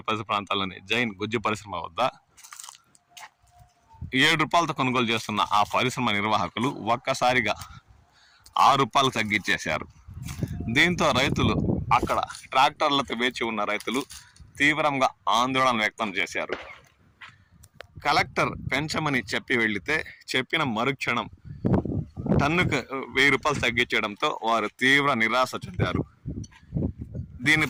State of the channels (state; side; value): identical; both; correlation 1.00